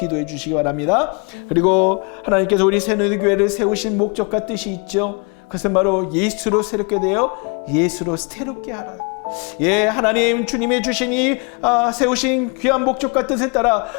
주시기 바랍니다. 그리고 하나님께서 우리 새누리교회를 세우신 목적과 뜻이 있죠. 그것은 바로 예수로 새롭게 되어 예수로 새롭게 하라. 예, 하나님 주님의 주신 이 세우신 귀한 목적과 뜻에 따라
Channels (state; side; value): quieter; right; 34.0 dB